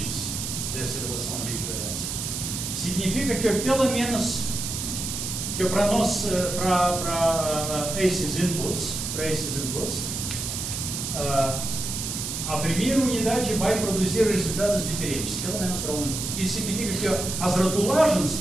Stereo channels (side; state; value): right; noise; hiss, 4 dB below the sound